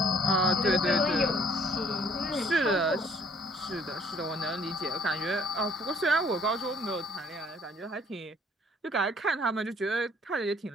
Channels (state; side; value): normal; both; correlation 0.60